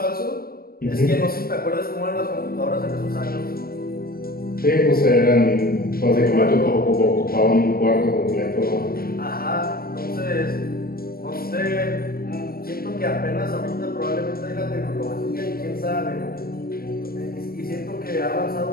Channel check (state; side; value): late; right; 0.43 ms